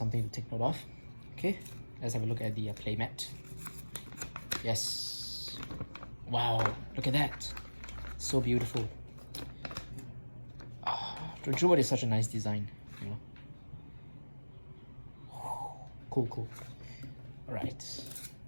to take note of. Okay, let's have a look at the playmat. Yes, wow, look at that, so beautiful. Drajeweled is such a nice design, you know. Cool. Alright,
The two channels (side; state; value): both; inverted; correlation -1.00